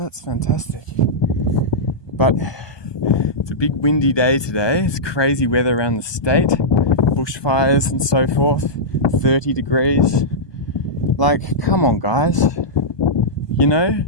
fantastic. But it's a big windy day today. It's crazy weather around the state. Bushfires and so forth. 30 degrees. Like, come on, guys. You know,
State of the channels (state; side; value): late; right; 1.2 ms